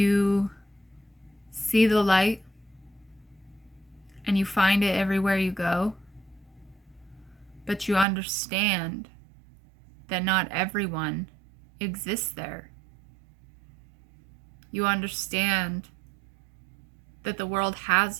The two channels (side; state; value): left; drops out; at 8.1 s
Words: see the light and you find it everywhere you go, but you understand that not everyone exists there. You understand that the world has